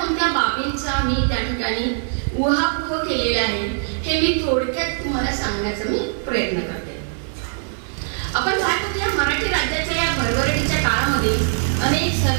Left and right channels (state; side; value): silent; left; digital silence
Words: बाबींचा मी त्या ठिकाणी उहापोह केलेला आहे हे मी थोडक्यात तुम्हाला सांगण्याचा मी प्रयत्न करते. आपण पाहतो की या मराठी राज्याच्या या भरभराटीच्या काळामध्ये अनेक